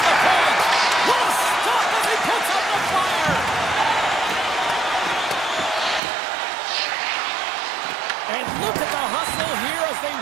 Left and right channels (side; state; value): left; drops out; at 6.0 s